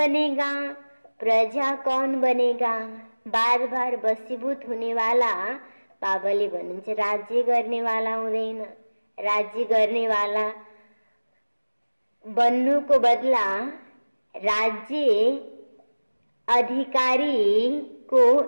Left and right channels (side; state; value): both; inverted; correlation -1.00